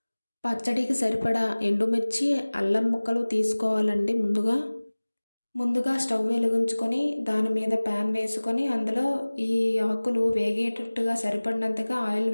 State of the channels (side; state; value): both; inverted; correlation -1.00